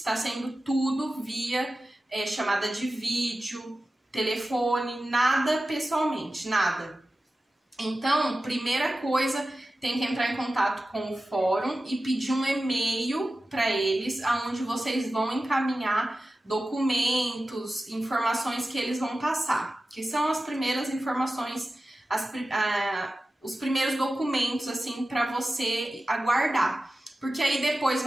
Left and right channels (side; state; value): both; normal; correlation 0.94